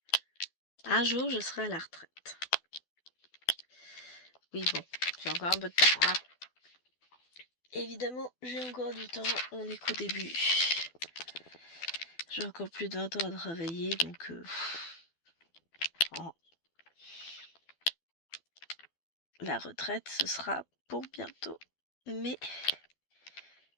un jour, je serai à la retraite. Oui, bon, j'ai encore un peu de temps, hein. Évidemment, j'ai encore du temps, on est qu'au début. J'ai encore plus de 20 ans à travailler, donc... oh. La retraite, ce sera pour bientôt. Mais...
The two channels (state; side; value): late; right; 12 ms